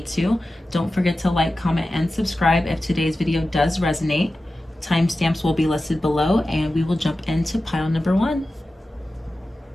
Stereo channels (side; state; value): both; normal; correlation 0.94